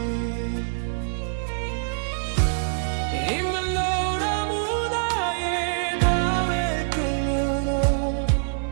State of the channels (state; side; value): silent; left; digital silence